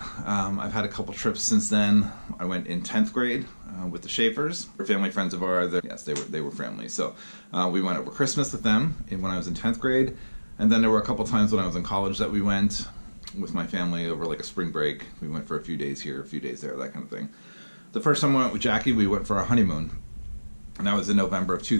I've had a couple trips since then. I went in 10th grade with the Schaefers. They're family friends of ours. Yes, they were family. So we went over Christmas with them when I was in 10th grade. And then there were a couple times when I was in college that we went with my family over like a spring break. We went for a few days here, a few days there, that kind of thing. The first time I went with Jackie, we went for our honeymoon. And that was in November of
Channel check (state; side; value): inverted; both; correlation -1.00